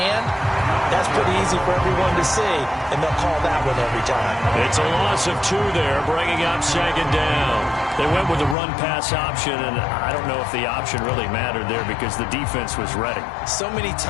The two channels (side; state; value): right; drops out; at 8.6 s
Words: that's pretty easy for everyone to see, and they'll call that one every time. It's a loss of 2 there, bringing up second down. They went with the run-pass option, and I don't know if the option really mattered there because the defense was ready. So many